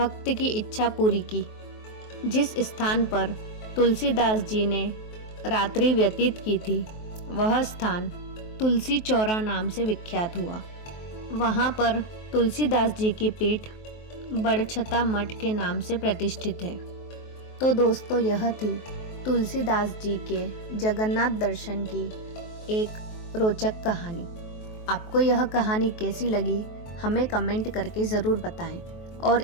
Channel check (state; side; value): late; right; 23 ms